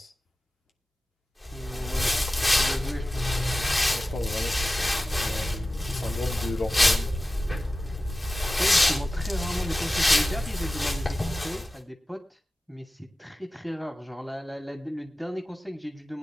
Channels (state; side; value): normal; both; correlation 0.96